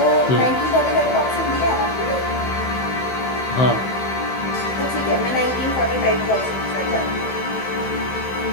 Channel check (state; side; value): late; right; 15 ms